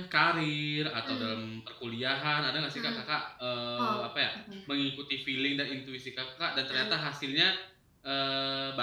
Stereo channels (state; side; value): identical; both; correlation 1.00